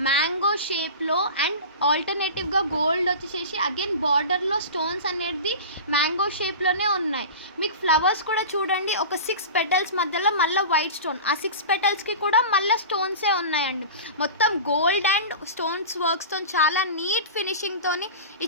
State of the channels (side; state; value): both; inverted; correlation -0.32